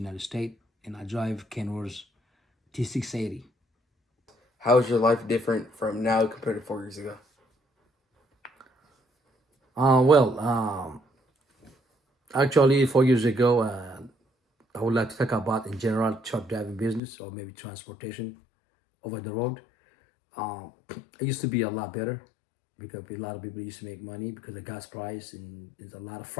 States, and I drive Kenworth T680. How is your life different from now compared to 4 years ago? Well, actually, 4 years ago, I would like to talk about in general truck driving business or maybe transportation over the road. It used to be a lot better because a lot of people used to make money because of gas price, and there's a lot of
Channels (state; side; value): drops out; right; at 17.0 s